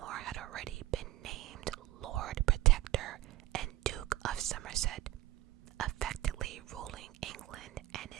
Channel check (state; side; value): quieter; left; 15.8 dB